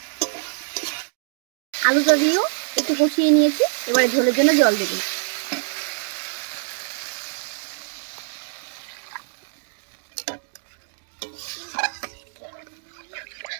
আলুটা দিয়েও একটু কষিয়ে নিয়েছি। এবারে ঝোলের জন্য জল দেবো।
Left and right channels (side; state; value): left; silent; digital silence